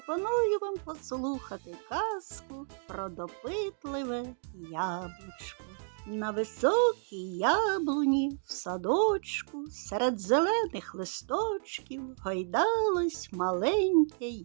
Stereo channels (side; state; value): left; silent; 56 dB below the other